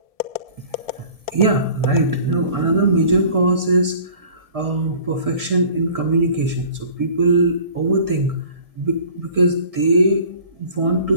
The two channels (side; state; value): left; late; 1.7 ms